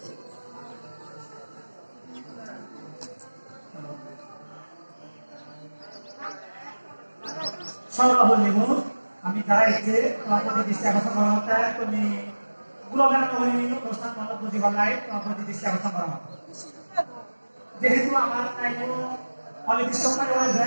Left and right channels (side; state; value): both; inverted; correlation -1.00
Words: আমি দাঁড়াইছে তোমার প্রতি দৃষ্টি আকর্ষণ করা হতে তুমি গুরুগান কহিনী প্রস্থান মত বুঝিবার লাই তোমার প্রতি দৃষ্টি আকর্ষণ করা হতো যেহেতু আমার নাই কোনো অনির্দিষ্ট সময় রয়েছে